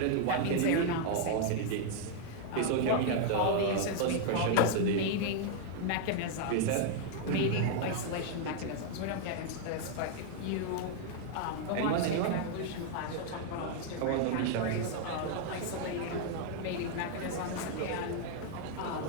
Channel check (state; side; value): different; both; correlation 0.00